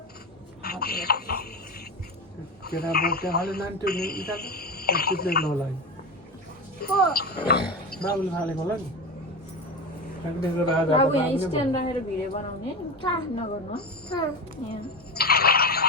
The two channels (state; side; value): normal; both; correlation 0.22